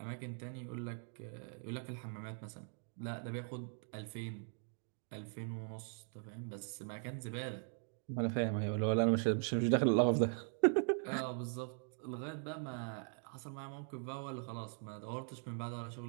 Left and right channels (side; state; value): left; silent; 51 dB below the other